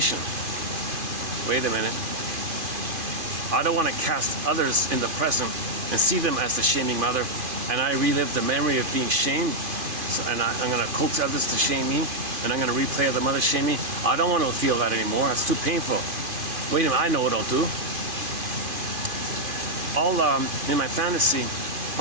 Wait a minute. I don't want to cast others in the present and see them as the shaming mother, and I relive the memory of being shamed. So, and I'm going to coax others to shame me, and I'm going to replay the mother shame me. I don't want to feel that anymore. It's too painful. Wait a minute, I know what I'll do. I'll, in my fantasy,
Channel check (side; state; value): left; late; 2.5 ms